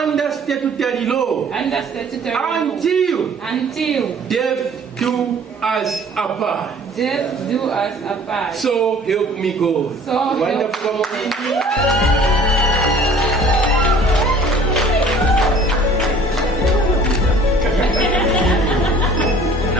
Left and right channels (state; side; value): normal; both; correlation 0.50